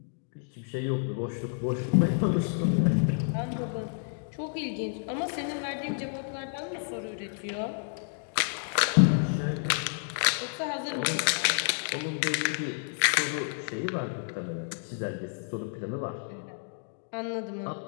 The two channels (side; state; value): right; silent; digital silence